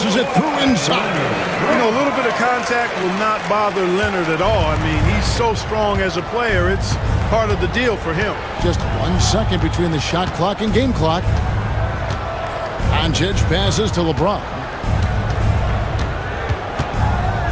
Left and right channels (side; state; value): both; identical; correlation 1.00